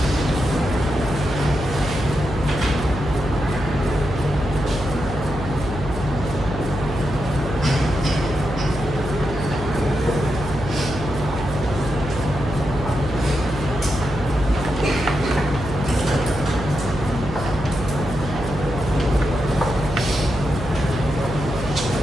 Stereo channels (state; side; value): noise; right; hum, 9 dB below the sound